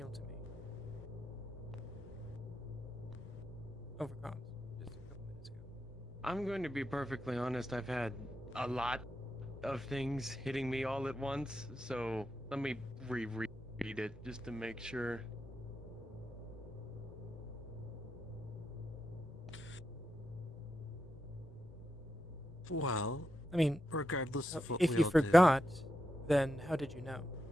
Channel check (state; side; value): normal; both; correlation 0.86